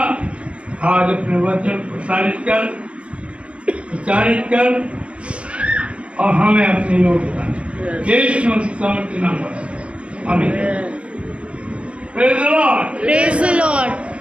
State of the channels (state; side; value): late; left; 0.056 ms